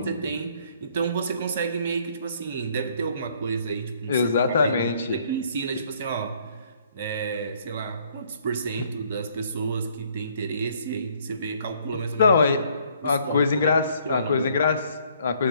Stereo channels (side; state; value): both; inverted; correlation -0.64